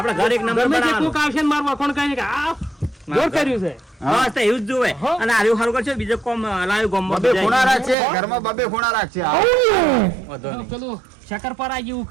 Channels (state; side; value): drops out; left; at 8.0 s